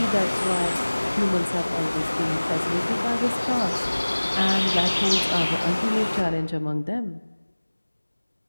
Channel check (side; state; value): both; inverted; correlation -1.00